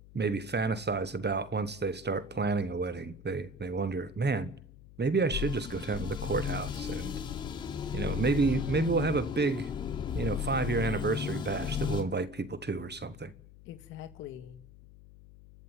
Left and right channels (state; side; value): noise; left; hum, 21 dB below the sound